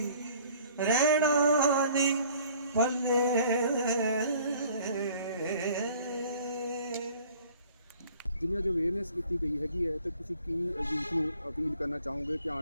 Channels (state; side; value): inverted; both; correlation -0.53